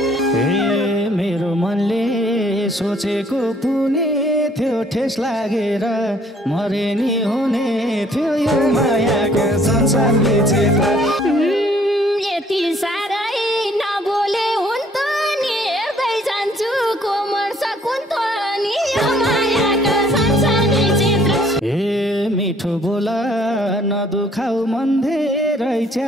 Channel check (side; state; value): both; normal; correlation 0.61